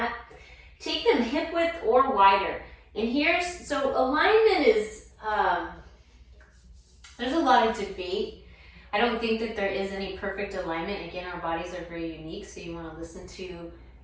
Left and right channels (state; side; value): identical; both; correlation 1.00